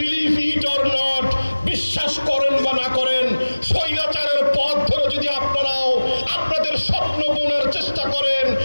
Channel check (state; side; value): inverted; both; correlation -1.00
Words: ইট অর নট, বিশ্বাস করেন বা না করেন, স্বৈরাচারের পথ ধরে যদি আপনারাও আপনাদের স্বপ্ন বোনার চেষ্টা করেন,